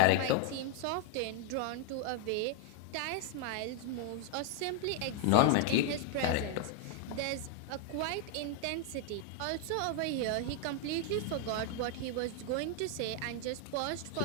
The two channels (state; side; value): different; both; correlation 0.00